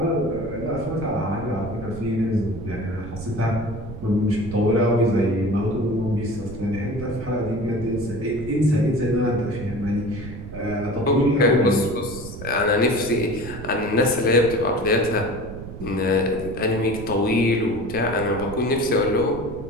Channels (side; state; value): right; noise; rumble, 11 dB below the sound